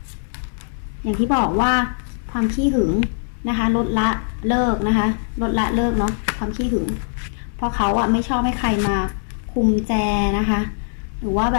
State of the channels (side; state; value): right; silent; digital silence